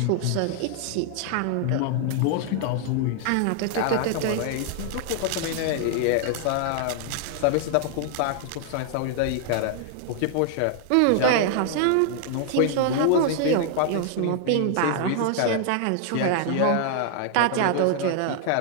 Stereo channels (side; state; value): both; different; correlation 0.00